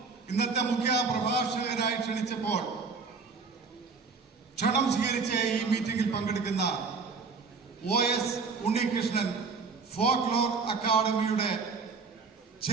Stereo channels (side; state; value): left; quieter; 4.8 dB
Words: ഇന്നത്തെ മുഖ്യ പ്രഭാഷകനായി ക്ഷണിച്ചപ്പോൾ ക്ഷണം സ്വീകരിച്ച ഈ മീറ്റിംഗിൽ പങ്കെടുക്കുന്ന OS ഉണ്ണികൃഷ്ണൻ, ഫോക്ലോർ അക്കാദമിയുടെ